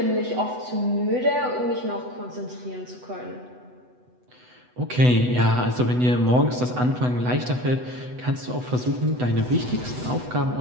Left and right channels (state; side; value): late; left; 8.0 ms